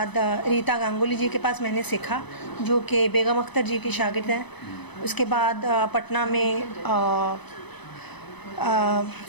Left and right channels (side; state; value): right; late; 0.99 ms